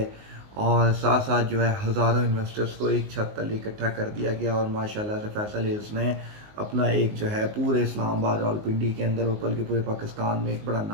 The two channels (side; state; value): left; late; 19 ms